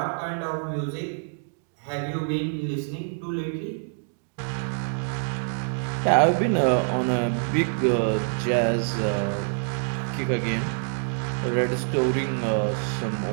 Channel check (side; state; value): left; silent; digital silence